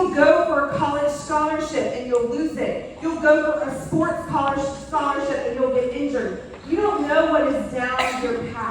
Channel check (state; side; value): identical; both; correlation 1.00